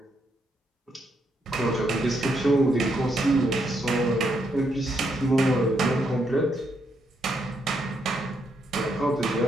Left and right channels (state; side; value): normal; both; correlation 0.77